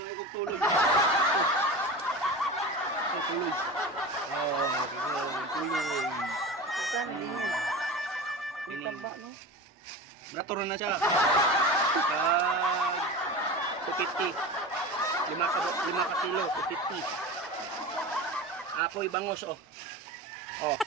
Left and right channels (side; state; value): both; normal; correlation 0.30